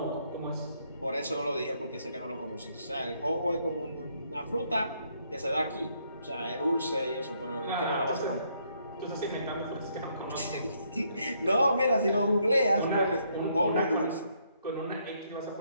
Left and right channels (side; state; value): both; inverted; correlation -0.72